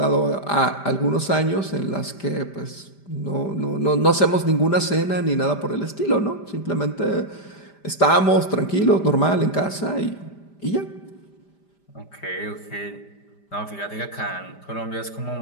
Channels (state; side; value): late; right; 5.0 ms